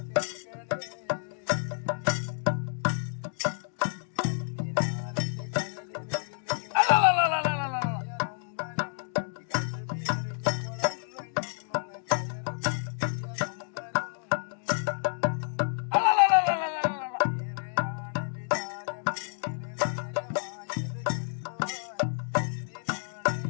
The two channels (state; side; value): silent; right; digital silence